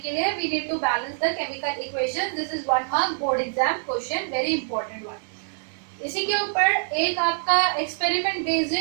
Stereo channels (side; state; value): left; silent; 62 dB below the other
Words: लिए we need to balance the chemical equation. This is 1 mark board exam question, very important one. इसी के ऊपर एक आपका एक्सपेरिमेंट बेस्ड